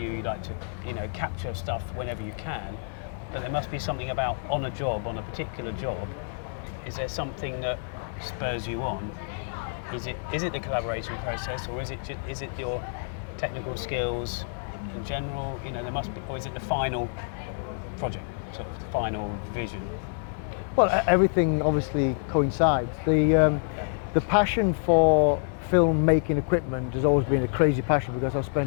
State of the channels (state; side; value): silent; right; 60 dB below the other